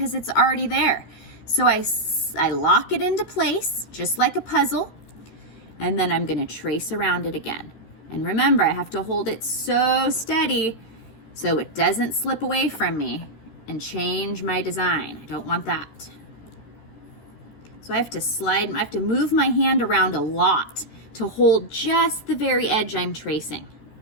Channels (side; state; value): right; late; 13 ms